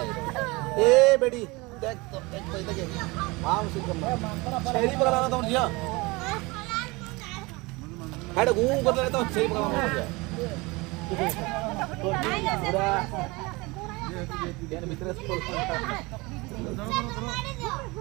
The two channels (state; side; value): quieter; left; 24.2 dB